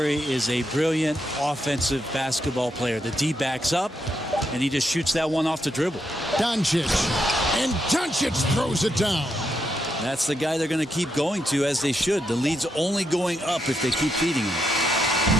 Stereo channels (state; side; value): normal; both; correlation 0.81